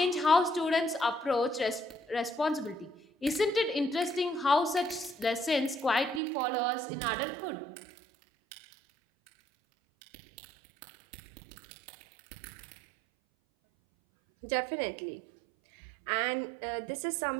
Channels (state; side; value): drops out; left; at 6.2 s